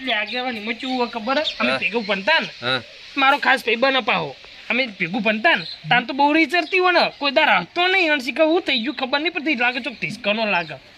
લે આગેવાની મચું હોય ખબર હે? અમે હા. ભેગું ભણતા ને હા મારો ખાસ ભાઈબંધ અપાવો અમે ભેગું ભણતા ને તાન તો બહુ રીચરતી હોય ને કોઈ દાર હતો નહીં અને શીખા હું થઈ ગયું ખબર નહીં પડતી લાગે ચોક ઢીસકાનો લાગે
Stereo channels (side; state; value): both; identical; correlation 1.00